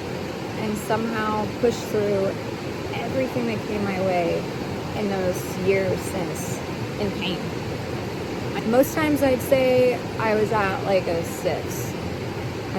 And somehow pushed through everything that came my way in those years since in pain. Most times I'd say I was at like a 6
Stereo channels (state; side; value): identical; both; correlation 1.00